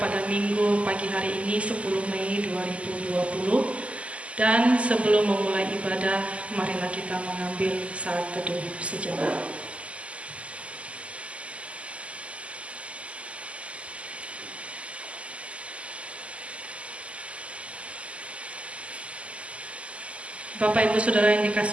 pada Minggu pagi hari ini 10 Mei 2020. Dan sebelum memulai ibadah, marilah kita mengambil saat teduh sejenak. Bapak Ibu Saudara yang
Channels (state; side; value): late; left; 0.061 ms